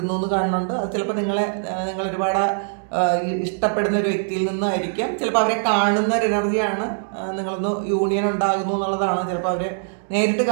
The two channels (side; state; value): left; silent; digital silence